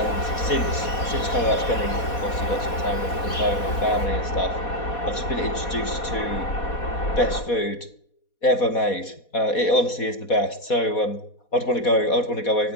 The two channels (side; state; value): right; late; 4.2 ms